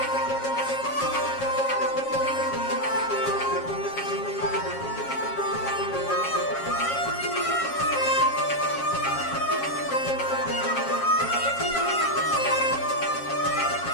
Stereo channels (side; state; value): right; late; 7.4 ms